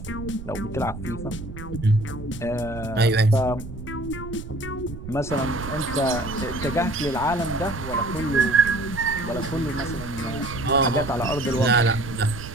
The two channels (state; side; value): noise; right; rumble, 11 dB below the sound